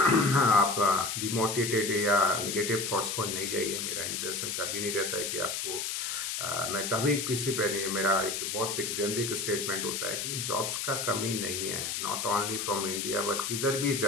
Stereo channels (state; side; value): noise; left; hiss, 3 dB below the sound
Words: डिमोटिवेटेड या निगेटिव थॉट्स को नहीं जाइए। मेरा इंटेंशन कभी नहीं रहता है कि आपको मैं कभी किसी पे नहीं, मेरा एक बहुत एक जेनरिक स्टेटमेंट होता है कि जॉब्स का कमी नहीं है, not only from India but किधर भी